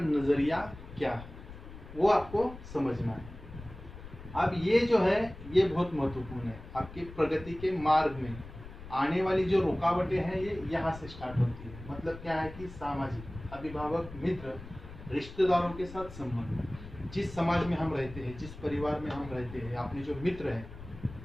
क्या है, वो आपको समझना है। अब ये जो है ये बहुत महत्वपूर्ण है। आपकी प्रगति के मार्ग में आने वाली जो रुकावटें हैं ये यहाँ से स्टार्ट होती है। मतलब क्या है कि सामाजिक, अभिभावक, मित्र, रिश्तेदारों के साथ संबंध, जिस समाज में हम रहते हैं, जिस परिवार में हम रहते हैं, अपने जो मित्र हैं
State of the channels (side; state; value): left; noise; rumble, 14 dB below the sound